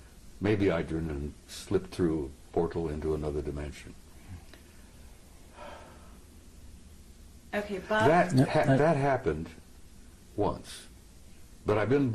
Maybe I turned and slipped through a portal into another dimension. Okay, Bob. That happened once. But I've been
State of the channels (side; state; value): both; identical; correlation 1.00